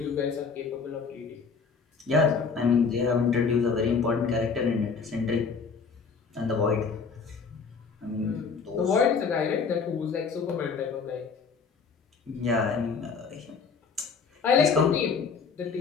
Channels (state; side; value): quieter; right; 5.4 dB